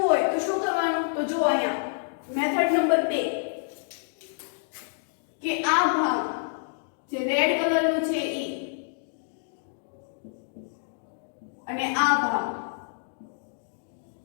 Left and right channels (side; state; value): right; silent; digital silence